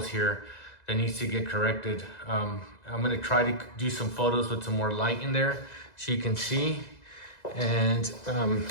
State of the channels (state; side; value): late; right; 2.0 ms